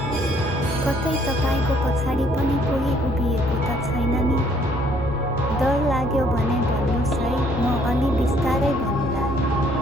कतै तपाईको पछाडि पनि कोही उभिएको त छैन नि? डर लाग्यो भने भन्नुस् है, म अलि बिस्तारै भन्नुला।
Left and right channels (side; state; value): both; normal; correlation 0.64